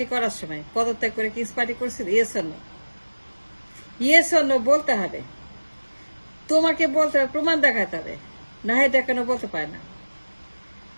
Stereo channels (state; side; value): inverted; both; correlation -1.00